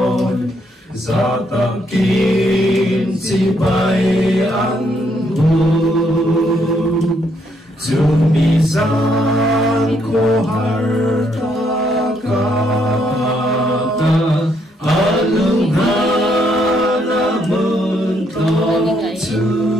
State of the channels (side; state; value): both; normal; correlation 0.73